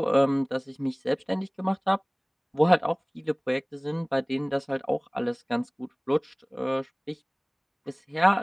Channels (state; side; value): identical; both; correlation 1.00